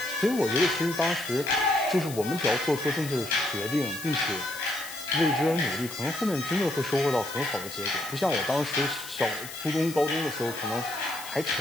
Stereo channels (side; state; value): left; noise; hiss, 12 dB below the sound